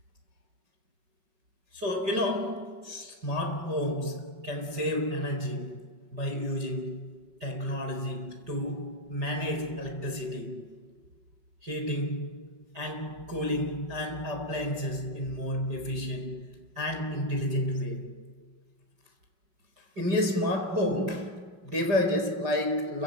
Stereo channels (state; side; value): late; left; 5.4 ms